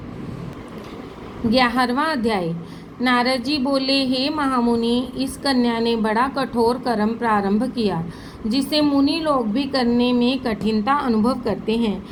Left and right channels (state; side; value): identical; both; correlation 1.00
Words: 11वां अध्याय। नारद जी बोले, हे महामुनि, इस कन्या ने बड़ा कठोर कर्म प्रारंभ किया, जिसे मुनि लोग भी करने में कठिनता अनुभव करते हैं।